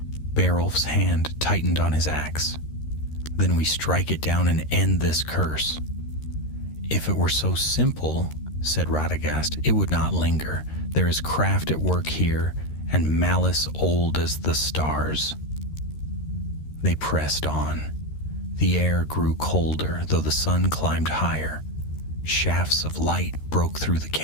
Beowulf's hand tightened on his axe. "Then we strike it down and end this curse." "If it were so simple," said Radagast, "it would not linger. There is craft at work here, and malice old as the stars." They pressed on. The air grew colder, though the sun climbed higher. Shafts of light broke through the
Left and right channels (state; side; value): late; right; 13 ms